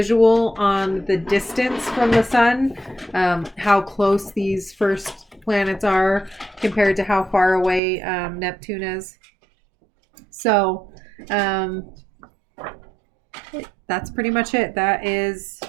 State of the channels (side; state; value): left; drops out; at 7.8 s